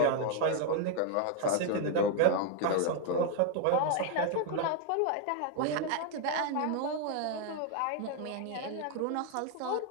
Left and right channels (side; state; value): both; different; correlation 0.01